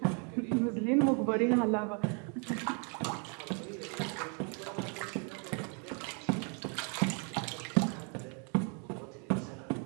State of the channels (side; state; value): left; quieter; 37.4 dB